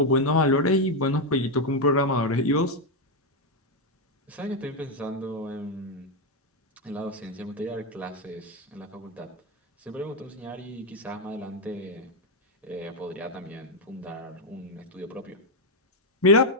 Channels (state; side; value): normal; both; correlation 0.03